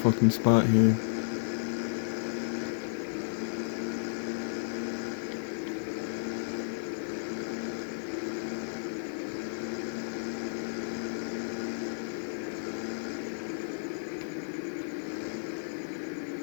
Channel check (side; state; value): right; silent; digital silence